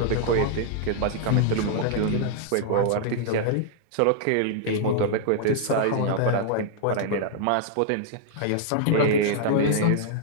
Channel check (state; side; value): different; both; correlation -0.01